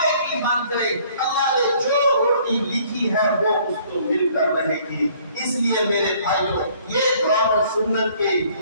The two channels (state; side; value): inverted; both; correlation -0.59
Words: کی بن جائے، اللہ نے جو روٹی لکھی ہے وہ اس کو مل کر رہے گی۔ اس لیے میرے بھائیوں، یہ قرآن و سنت کے